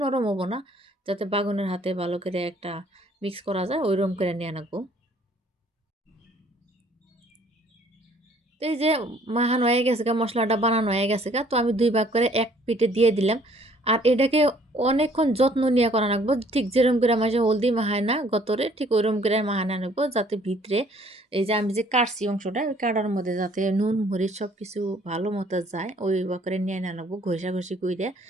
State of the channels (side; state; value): both; normal; correlation 0.59